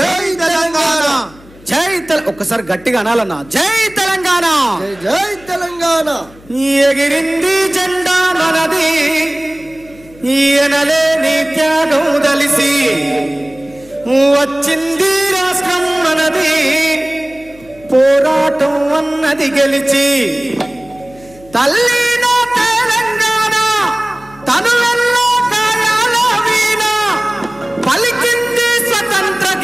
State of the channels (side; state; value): left; noise; hum, 24 dB below the sound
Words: తెలంగాణ, ఒక్కసారి గట్టిగా అనాలన్నా. జై తెలంగాణ, జై తెలంగాణ. ఎగిరింది జెండా మనది, ఈయనలేని త్యాగం దలిసి వచ్చింది రాష్ట్రం మనది, పోరాటం అన్నది గెలిచి తల్లి నా తెలంగాణ తనువెల్లో కాయాల వీణ పలికింది స్వతంత్ర